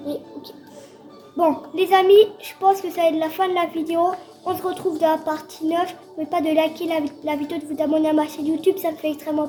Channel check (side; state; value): both; identical; correlation 1.00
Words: Et, ok. Bon, les amis, je pense que ça va être la fin de la vidéo. On se retrouve dans la partie 9. N'oubliez pas de liker la vidéo, de vous abonner à ma chaîne YouTube, ça me fait extrêmement